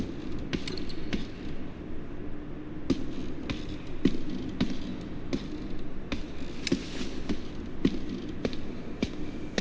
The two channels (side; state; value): both; identical; correlation 1.00